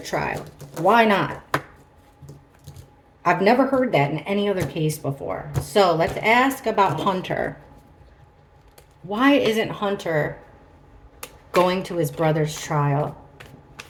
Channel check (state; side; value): identical; both; correlation 1.00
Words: Why not? I've never heard that in any other case before. So let's ask about Hunter. Why isn't Hunter going to his brother's trial?